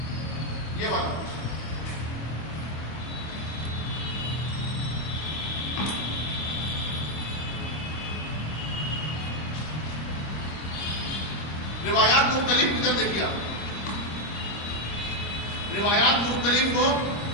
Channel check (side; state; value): right; late; 26 ms